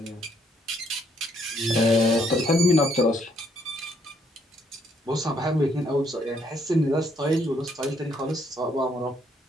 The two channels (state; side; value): normal; both; correlation 0.70